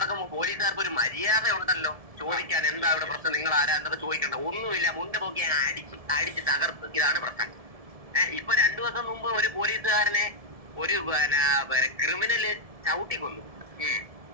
പോലീസുകാർക്ക് ഒരു മര്യാദ ഉണ്ടല്ലോ ചോദിക്കാൻ. എന്താ ഇവിടെ പ്രശ്നം, നിങ്ങൾ ആരാ എന്നൊക്കെ ചോദിക്കണ്ട. ഒന്നുമില്ല, മുണ്ട് പോക്കി അടിച്ച് തകർത്ത്. ഇതാണ് പ്രശ്നം. ഇപ്പൊ 2 ദിവസം മുമ്പ് ഒരു പോലീസുകാരനെ ഒരു ക്രിമിനല് ചവിട്ടിക്കൊന്നു.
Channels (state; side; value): late; left; 1.7 ms